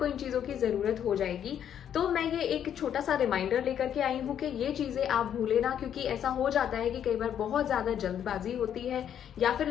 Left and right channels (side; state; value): right; quieter; 9.4 dB